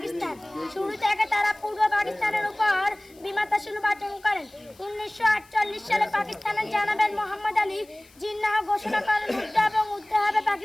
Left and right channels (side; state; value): left; noise; hiss, 27 dB below the sound